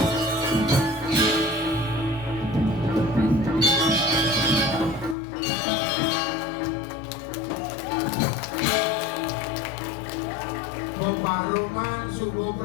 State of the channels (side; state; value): right; drops out; at 5.2 s